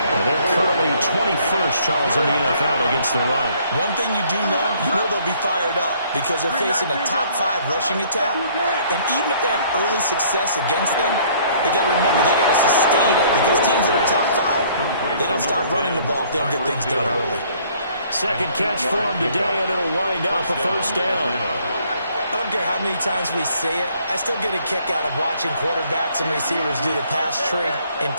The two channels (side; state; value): both; inverted; correlation -0.60